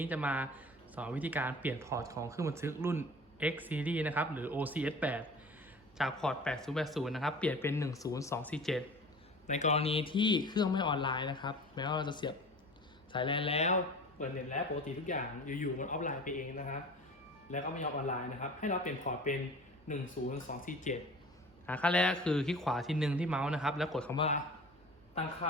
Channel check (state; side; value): noise; right; hum, 28 dB below the sound